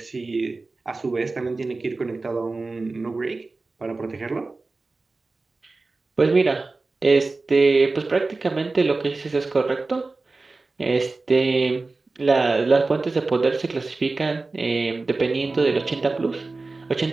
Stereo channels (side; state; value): left; quieter; 3.6 dB